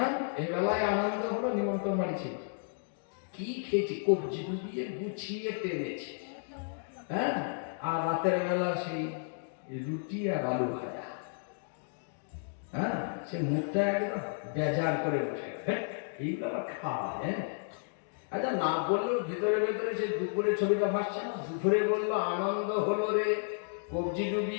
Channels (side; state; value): right; silent; digital silence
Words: এই বেলায় আনন্দ হলো, নিমন্ত্রণ বাড়িছি, কি খেয়েছি, কবজি ডুবিয়ে গুছিয়ে টেনেছি, হ্যাঁ, আর রাতের বেলা সেই রুটি আর আলু ভাজা, হ্যাঁ, সে মুখটা একদম বেজার করে বসে, এইগুলো আবার খাওয়া। হ্যাঁ, আচ্ছা না বললেও ভেতরে ভেতরে সে দুপুরের ছবিটা ভাসছে না। দুপুরে বললো আনন্দ হলো রে, কবজি